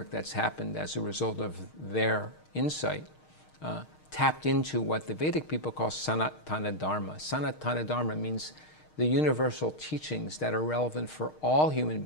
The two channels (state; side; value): late; right; 6.5 ms